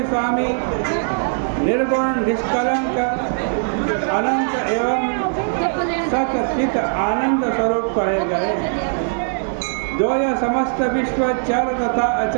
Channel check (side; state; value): left; silent; digital silence